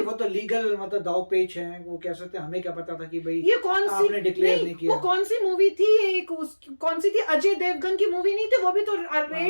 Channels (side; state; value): both; inverted; correlation -1.00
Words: तो लीगल मतलब दाव पेच है, वो कह सकते हैं, हमें क्या पता था कि भाई ये कौन सी, आपने डिक्लेयर नहीं किया। वो कौन सी मूवी थी, एक कौन सी थी, अजय देवगन की मूवी नहीं थी, वो भी तो